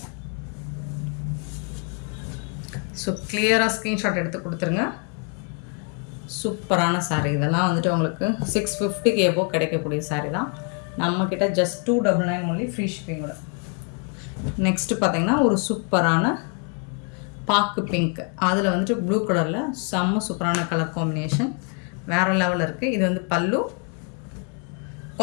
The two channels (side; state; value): right; quieter; 38.1 dB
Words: ஸோ கிளியராக ஸ்க்ரீன்ஷாட் எடுத்து கொடுத்துருங்க. சூப்பரான சாரீ. இதெல்லாம் வந்துட்டு உங்களுக்கு 650க்கு எபோ கிடைக்கக்கூடிய சாரீ தான். நம்மக்கிட்ட ஜஸ்ட் 299 ஒன்லி. ஃப்ரீ ஷிப்பிங்கோட. நெக்ஸ்ட்டு பார்த்தீங்கன்னா ஒரு சூப்பரான பாக்கு பிங்க். அதில் வந்துட்டு ப்ளூ கலரில் செம்ம சூப்பரான கலர் காம்பினேஷன். வேறு லெவலில் இருக்குது. இது வந்து பல்லு.